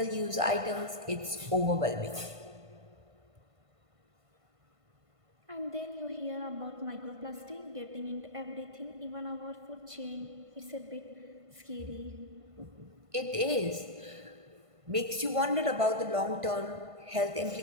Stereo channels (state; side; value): late; left; 1.5 ms